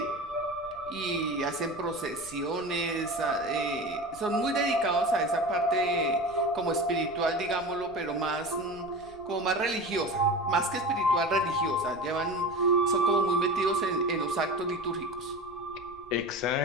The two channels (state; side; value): noise; left; rumble, 24 dB below the sound